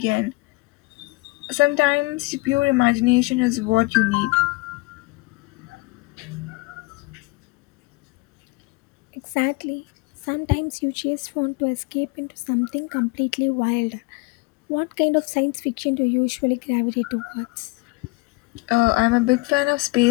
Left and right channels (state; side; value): quieter; right; 24.7 dB